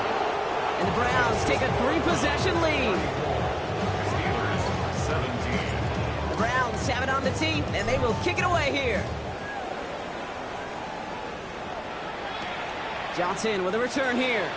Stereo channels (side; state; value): both; identical; correlation 1.00